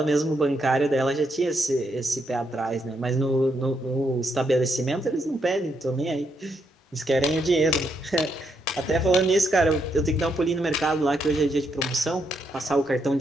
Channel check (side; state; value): both; normal; correlation 0.78